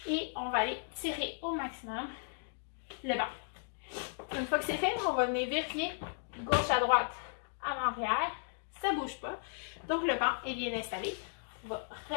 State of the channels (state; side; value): silent; right; digital silence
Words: et on va aller tirer au maximum le banc. Une fois que c'est fait, on va venir vérifier gauche à droite, avant-arrière. Ça ne bouge pas. Donc, le banc est bien installé. On va